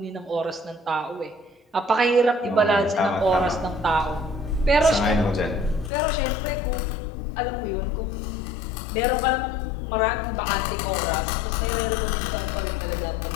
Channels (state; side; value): drops out; right; at 5.9 s